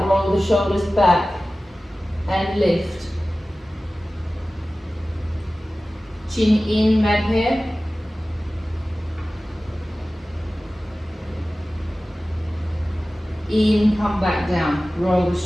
roll the shoulders back and lift. Chin in, mad hair. In, come back down, roll the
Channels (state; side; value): normal; both; correlation 0.96